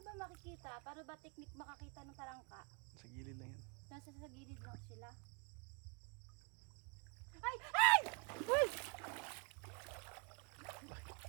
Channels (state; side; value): quieter; left; 34.6 dB